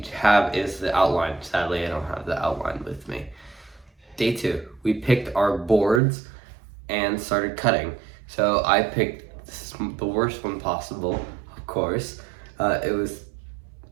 have is the outline. Sadly, I don't have the outline with me. Day two, we picked our boards and started cutting. So I picked the worst one possible, of course. It was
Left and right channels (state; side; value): drops out; left; at 6.0 s